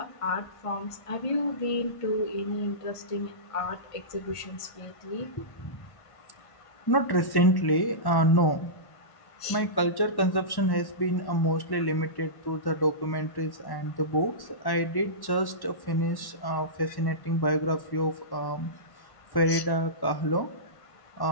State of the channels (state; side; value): late; right; 1.1 ms